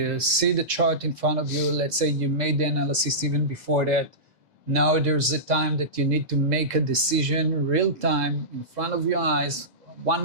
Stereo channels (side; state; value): left; late; 2.0 ms